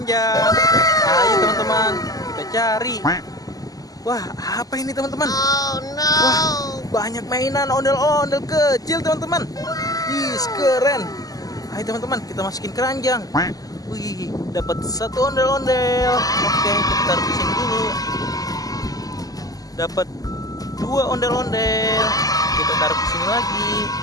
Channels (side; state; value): right; late; 0.17 ms